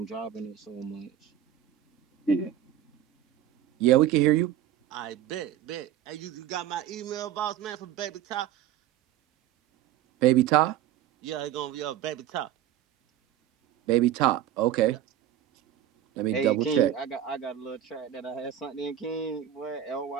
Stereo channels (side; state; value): left; quieter; 11.1 dB